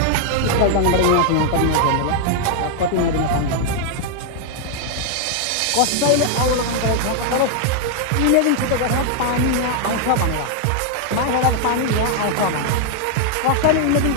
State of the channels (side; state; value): both; different; correlation 0.00